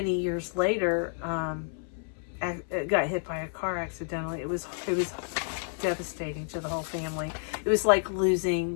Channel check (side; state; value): right; silent; 58 dB below the other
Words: years later, got hit by a car accidentally. It was devastating to the whole family. It was like losing